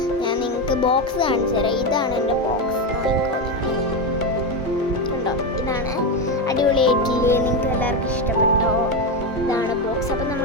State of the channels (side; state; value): both; normal; correlation 0.12